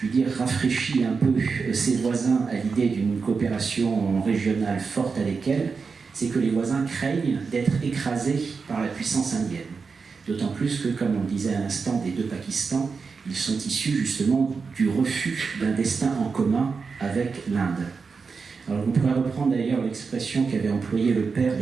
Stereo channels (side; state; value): left; quieter; 5.0 dB